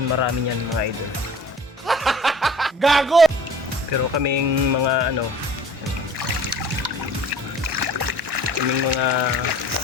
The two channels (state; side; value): normal; both; correlation 0.46